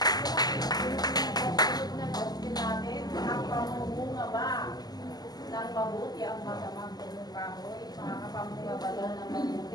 Ang pamumunga ba ng mabuti ang masamang punong kahoy? Makakapamunga ba daw ng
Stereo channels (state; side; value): late; right; 0.20 ms